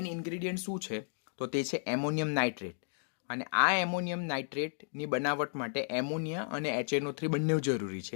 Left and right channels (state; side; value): silent; right; digital silence